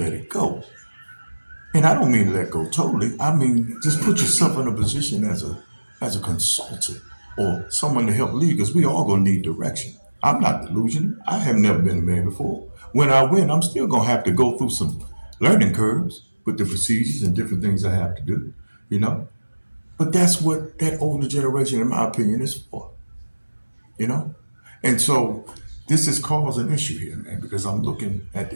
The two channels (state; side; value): inverted; both; correlation -1.00